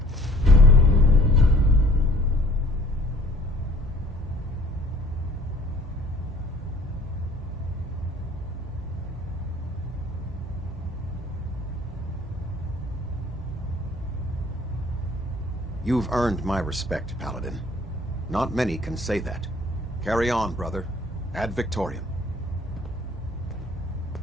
You've earned my respect, Paladin. Not many can say that. Carry on, brother. Ad Victoriam.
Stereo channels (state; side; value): normal; both; correlation 0.56